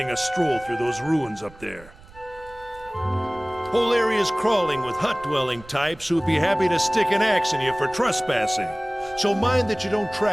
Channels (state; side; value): noise; right; rumble, 21 dB below the sound